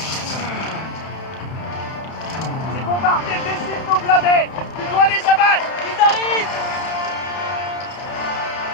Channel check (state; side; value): late; right; 31 ms